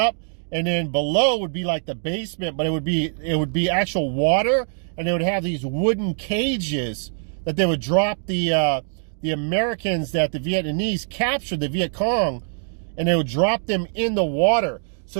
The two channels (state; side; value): silent; left; digital silence